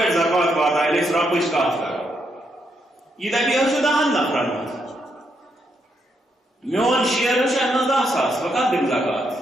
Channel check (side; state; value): both; normal; correlation 0.78